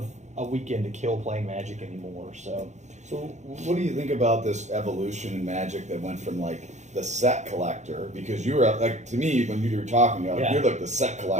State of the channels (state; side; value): late; left; 0.34 ms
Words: a weekend to kill playing Magic anymore. So what do you think about this evolution in Magic that went from the set collector, because you were to me when you were talking, you're like the set